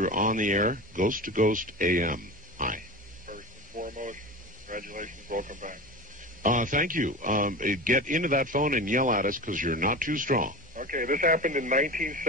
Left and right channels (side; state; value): both; normal; correlation 0.29